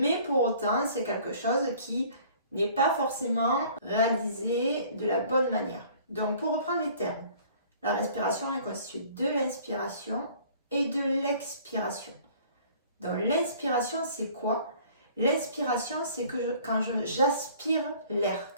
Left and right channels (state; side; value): inverted; both; correlation -0.52